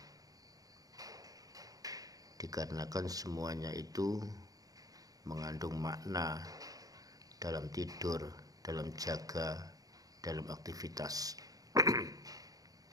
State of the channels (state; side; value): late; left; 0.18 ms